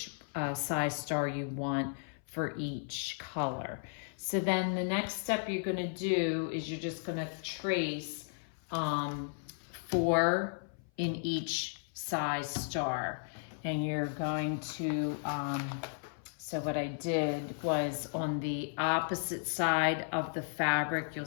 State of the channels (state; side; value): silent; right; 55 dB below the other